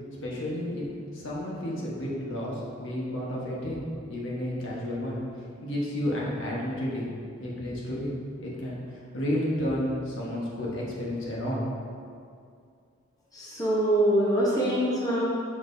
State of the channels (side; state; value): both; normal; correlation 0.61